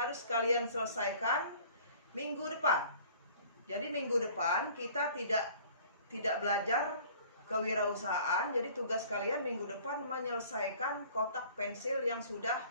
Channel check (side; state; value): both; inverted; correlation -0.51